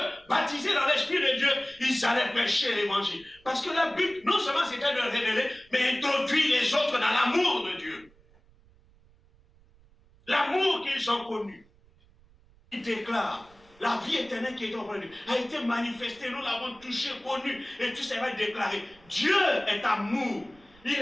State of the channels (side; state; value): right; noise; rumble, 28 dB below the sound